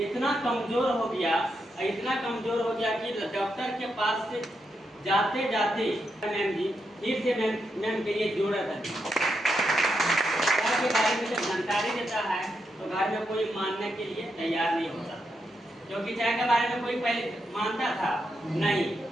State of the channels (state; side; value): normal; both; correlation 0.83